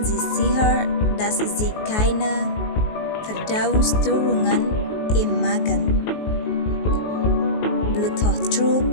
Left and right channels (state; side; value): late; right; 19 ms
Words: Sie sicher, dass Sie keine Verdauungsstörungen im Magen, Bluthochdruck